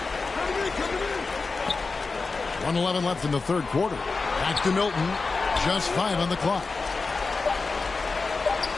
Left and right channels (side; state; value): right; quieter; 4.1 dB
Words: 1:11 left in the 3rd quarter. Back to Milton. Just 5 on the clock.